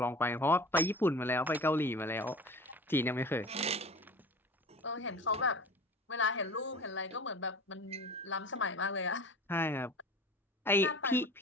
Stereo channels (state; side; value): normal; both; correlation 0.38